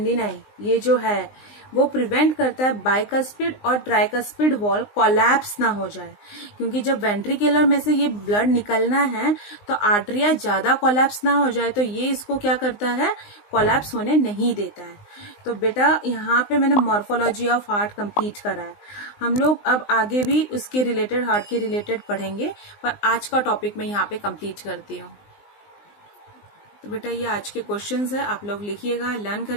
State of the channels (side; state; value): right; late; 19 ms